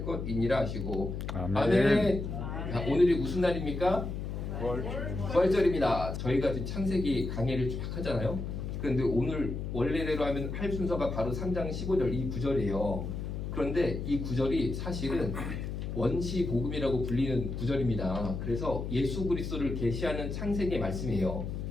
것이니라 하시고 아멘. 아멘. 자, 오늘이 무슨 날입니까? 부활절. 부활절입니다. 저희가 지금 창세기 강의를 쫙 하잖아요. 그런데 오늘 원래대로 하면 할 순서가 바로 3장 15절 이 구절이에요. 그런데 이 구절이 사실은 원시 복음이라고 불리는 구절입니다. 그래서 예수 그리스도를 계시하는 창세기의 말씀이에요.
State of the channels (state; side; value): noise; left; hum, 5 dB below the sound